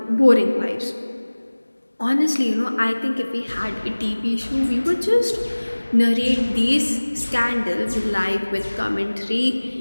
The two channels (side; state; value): both; inverted; correlation -1.00